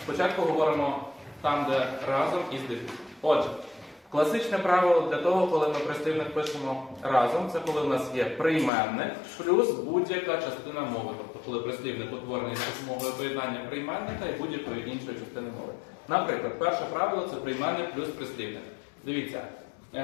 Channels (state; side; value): drops out; right; at 8.7 s